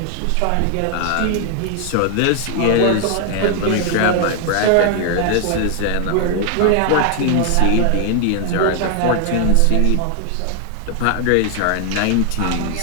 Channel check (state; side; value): different; both; correlation 0.00